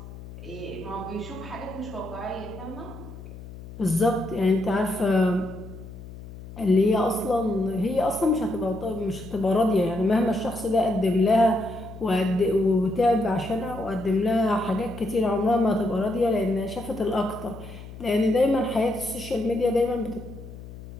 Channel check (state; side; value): noise; left; hum, 14 dB below the sound